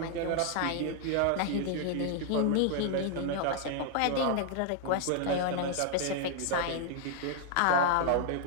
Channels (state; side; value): different; both; correlation 0.00